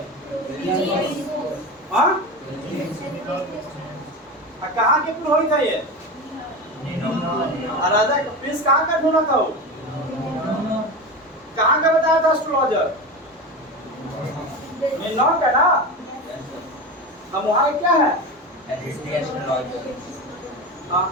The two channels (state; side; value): normal; both; correlation 0.25